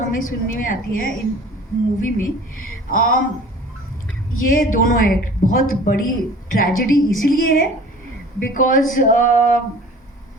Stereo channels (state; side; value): normal; both; correlation 0.45